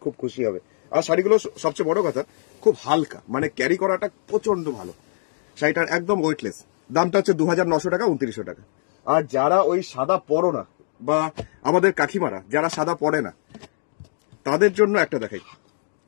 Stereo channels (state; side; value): silent; right; digital silence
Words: খুব খুশি হবে। আর শাড়িগুলো সবচেয়ে বড় কথা খুব হালকা, মানে ক্যারি করাটা প্রচন্ড ভালো। শাড়িটার একদম ওয়েটলেস। দামটা হচ্ছে 2900 টাকা, 2900 টাকা। আর যারা ওই সাদা পরো না, বা আমাদের কাকিমারা যারা সাদা পরে না, তাদের জন্য একটা দেখাই।